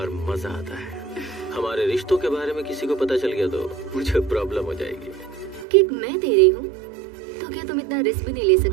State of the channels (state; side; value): drops out; left; at 5.7 s